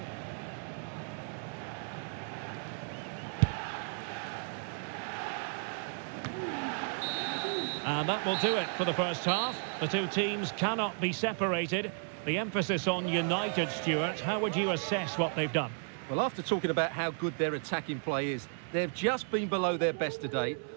And that will do it for the first half. The two teams cannot be separated. The emphasis on United, Stuart. How would you assess what they've done? Well, after talking about how good their attacking play is, they've just been below their best today.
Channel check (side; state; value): left; silent; 55 dB below the other